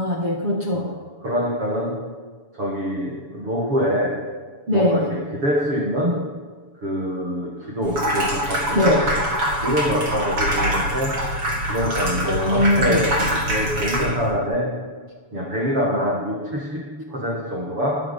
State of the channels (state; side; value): late; left; 7.0 ms